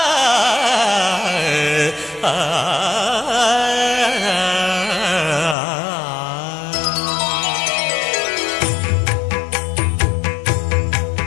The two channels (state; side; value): drops out; right; at 5.6 s